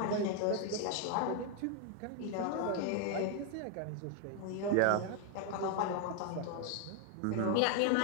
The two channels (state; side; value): different; both; correlation 0.01